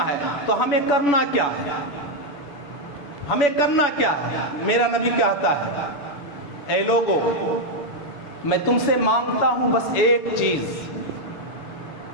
ہے. تو ہمیں کرنا کیا ہے؟ ہمیں کرنا کیا ہے؟ میرا نبی کہتا ہے، اے لوگو، میں تم سے مانگتا ہوں بس ایک چیز.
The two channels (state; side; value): late; right; 7.0 ms